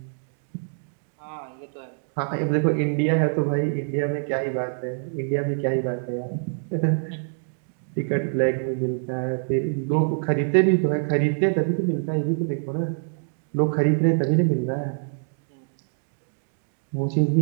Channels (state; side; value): silent; left; digital silence